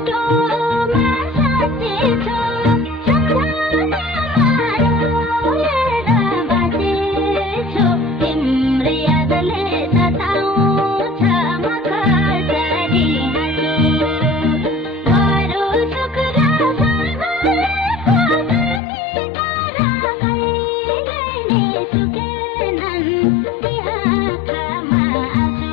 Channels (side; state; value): right; drops out; at 18.8 s